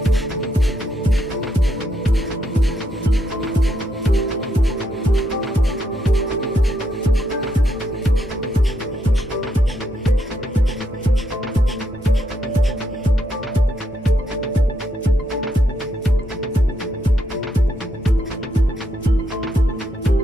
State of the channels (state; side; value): normal; both; correlation 0.78